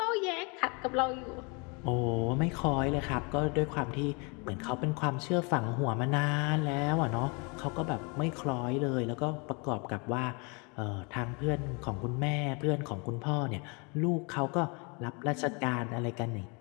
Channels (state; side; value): quieter; right; 31.6 dB